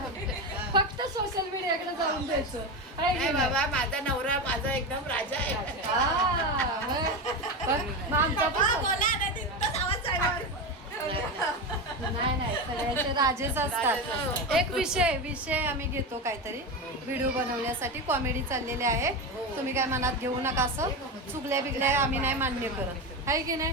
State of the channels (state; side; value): normal; both; correlation 0.18